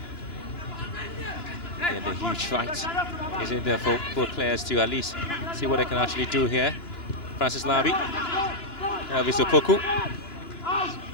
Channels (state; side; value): late; right; 2.9 ms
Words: And the huge fight is in there for both players to at least see what they can actually do here. Francis Labi, Elvis Opoku.